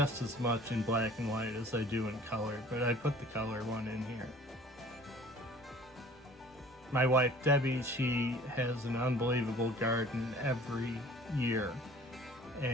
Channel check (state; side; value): normal; both; correlation 0.48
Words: as much in black and white as I do in color, but I put the color one in here. My wife Debbie, she has an unbelievable garden every year,